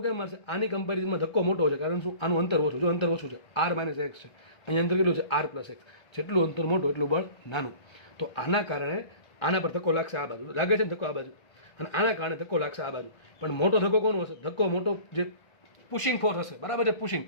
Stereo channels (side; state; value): right; late; 1.3 ms